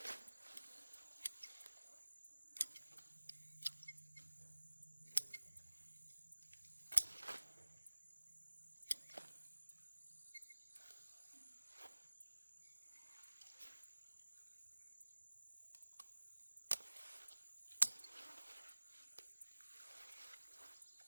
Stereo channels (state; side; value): inverted; both; correlation -1.00